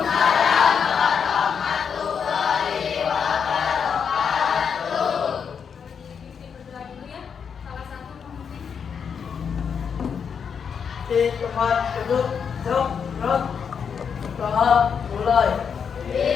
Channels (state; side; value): quieter; right; 6.8 dB